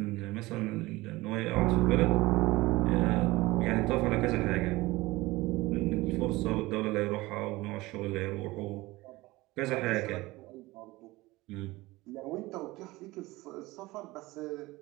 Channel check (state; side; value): quieter; left; 20.3 dB